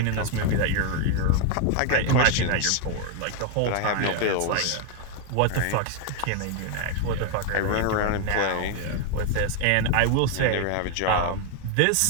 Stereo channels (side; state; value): both; different; correlation 0.00